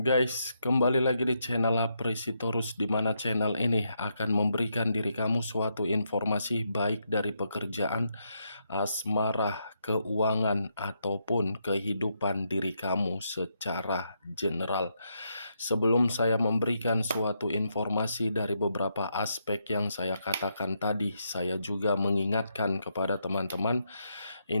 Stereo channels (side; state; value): both; inverted; correlation -0.80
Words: kembali lagi di channel Apresitorus, di mana channel ini akan memberikan diri kamu suatu informasi baik dari pekerjaan, asmara, keuangan, ataupun kehidupan diri kamu secara general. Sebelum saya memberikan suatu informasi dari beberapa aspek yang saya katakan tadi, saya juga mengingatkan kepada teman-teman,